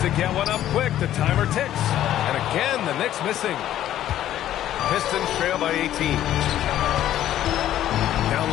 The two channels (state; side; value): quieter; right; 12.3 dB